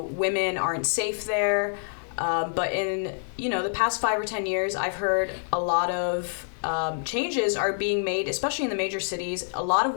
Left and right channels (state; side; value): silent; right; digital silence